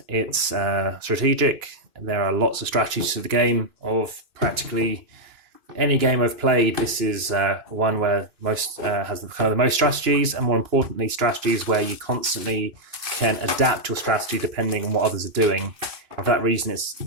it's strategic. There are lots of strategies to the game. Of practically any game I've played, this is one where most has the most strategies, and more importantly, strategies where you constantly can adapt your strategy depending on what others are doing. And for that reason, it's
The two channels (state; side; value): late; left; 2.9 ms